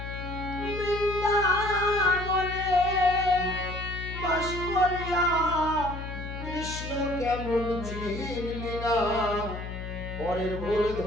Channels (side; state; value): left; noise; hum, 8 dB below the sound